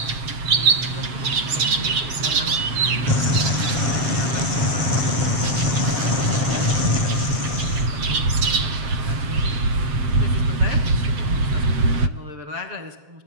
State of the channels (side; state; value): left; late; 7.5 ms